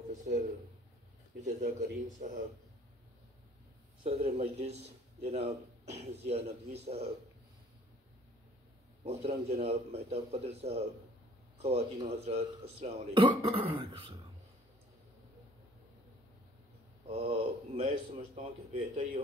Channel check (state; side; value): normal; both; correlation 0.55